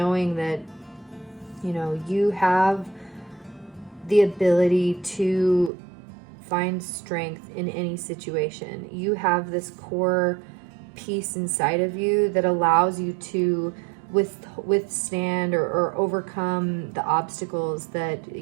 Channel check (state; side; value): drops out; left; at 5.7 s